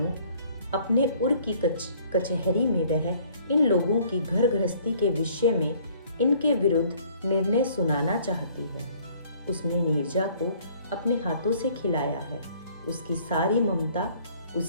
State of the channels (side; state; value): both; inverted; correlation -0.58